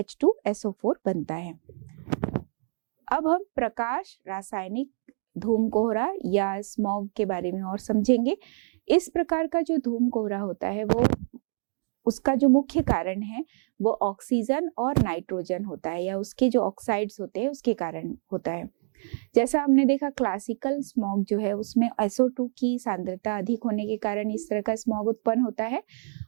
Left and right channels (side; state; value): left; silent; digital silence